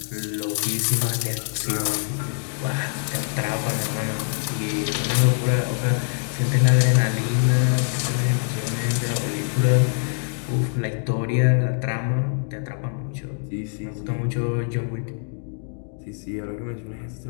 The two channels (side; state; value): right; silent; 63 dB below the other